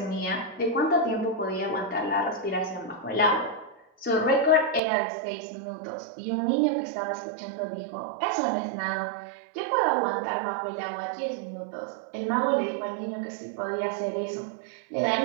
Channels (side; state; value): left; drops out; at 4.8 s